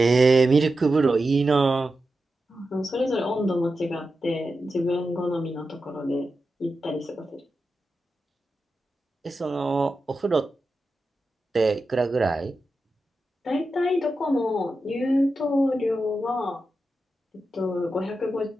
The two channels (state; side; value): normal; both; correlation 0.90